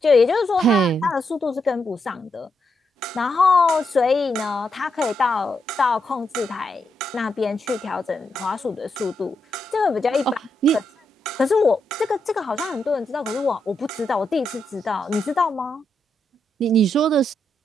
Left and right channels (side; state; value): both; normal; correlation 0.82